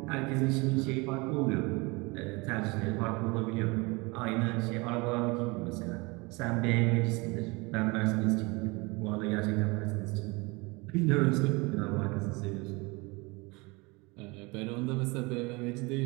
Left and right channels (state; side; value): quieter; left; 26.1 dB